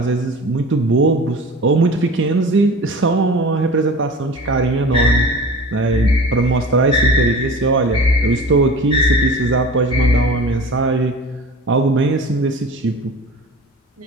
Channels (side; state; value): both; normal; correlation 0.38